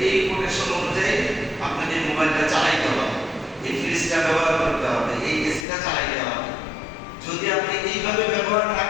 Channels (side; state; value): right; drops out; at 5.7 s